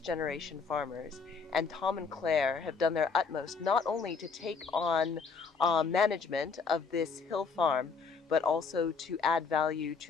farmers, and Tom and Claire have done their utmost not only to take on management of this hill farm, but also to add value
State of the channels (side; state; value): right; quieter; 5.0 dB